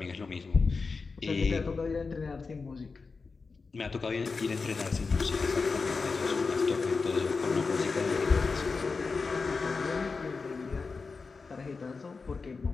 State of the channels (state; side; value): quieter; right; 4.5 dB